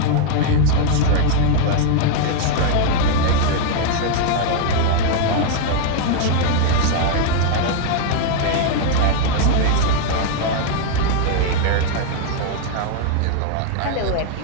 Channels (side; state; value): both; different; correlation 0.00